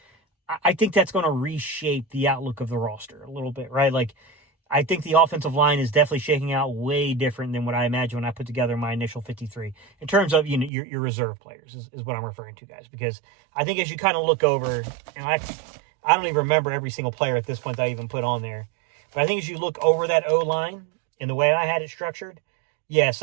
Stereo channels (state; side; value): drops out; left; at 10.7 s